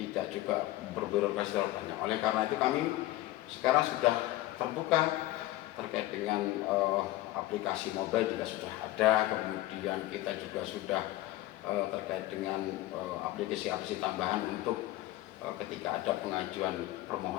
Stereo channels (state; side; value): quieter; right; 16.6 dB